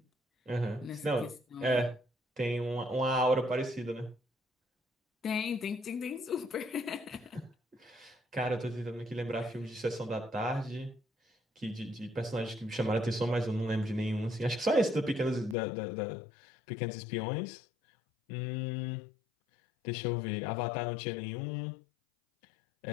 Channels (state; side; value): drops out; right; at 15.6 s